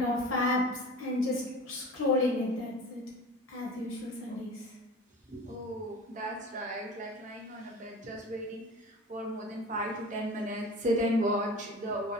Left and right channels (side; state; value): both; normal; correlation 0.37